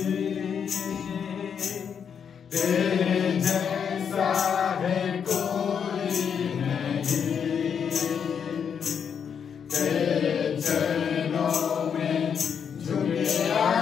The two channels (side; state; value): right; quieter; 7.3 dB